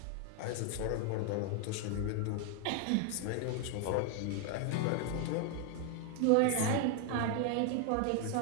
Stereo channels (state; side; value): different; both; correlation 0.01